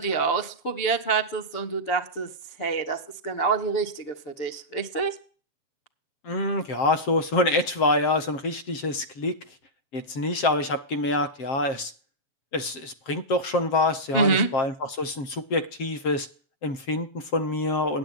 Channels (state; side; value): late; right; 7.5 ms